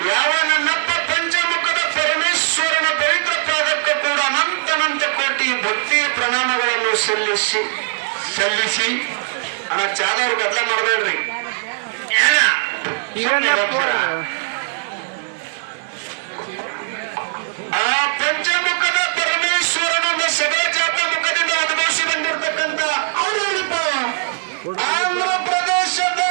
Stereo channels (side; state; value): left; silent; 66 dB below the other